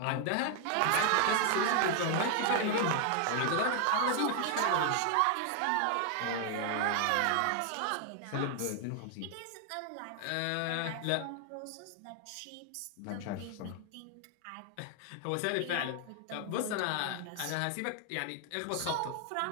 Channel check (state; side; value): different; both; correlation 0.00